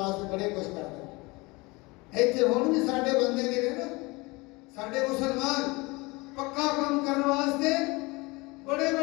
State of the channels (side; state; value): right; quieter; 24.6 dB